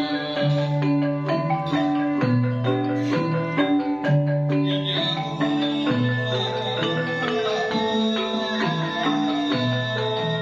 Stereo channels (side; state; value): left; noise; hum, 28 dB below the sound